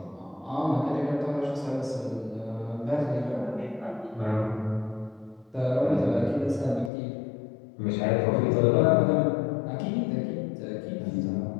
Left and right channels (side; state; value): right; drops out; at 6.9 s